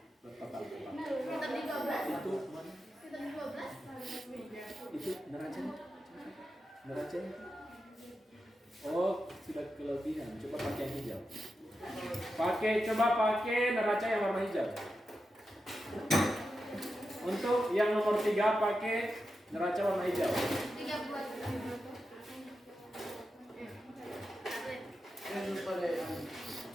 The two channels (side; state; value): both; normal; correlation 0.89